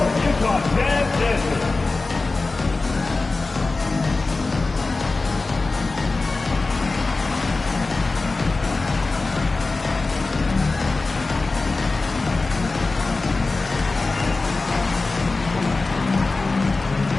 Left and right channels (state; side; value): quieter; right; 3.6 dB